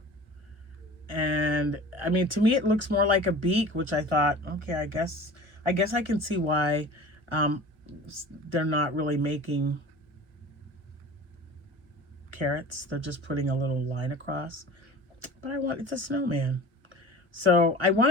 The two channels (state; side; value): late; left; 1.1 ms